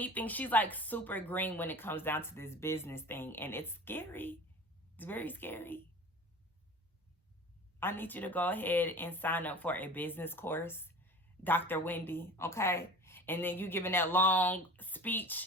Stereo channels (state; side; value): normal; both; correlation 0.39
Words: she's like super green when it comes down to this business thing. And it's scary. It's very scary. I need you to go ahead and sign up for a business course, Dr. Wendy, okay? And then you giving that long